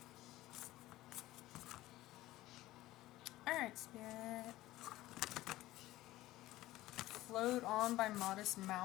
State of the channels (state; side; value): quieter; right; 16.5 dB